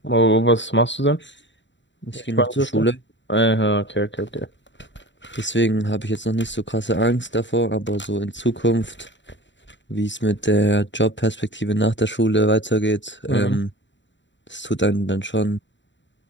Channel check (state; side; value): late; right; 0.53 ms